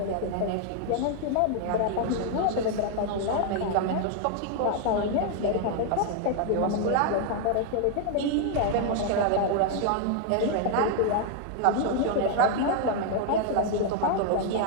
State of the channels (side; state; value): both; different; correlation 0.00